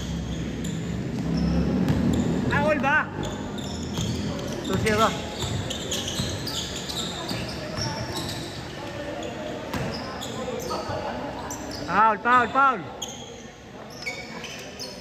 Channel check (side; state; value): both; identical; correlation 1.00